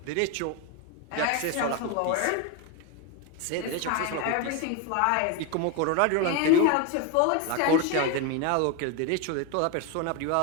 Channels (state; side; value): different; both; correlation 0.02